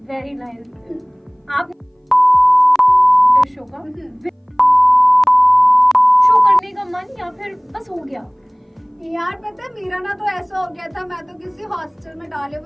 Very nice. आप शो का शो करने का मन या फिर बस हो गया? यार पता है मेरा ना तो ऐसा हो गया था, मैं तो किसी हॉस्टल में डाले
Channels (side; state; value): both; identical; correlation 1.00